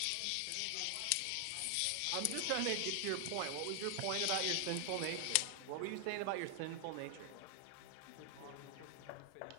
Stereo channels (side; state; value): both; different; correlation 0.00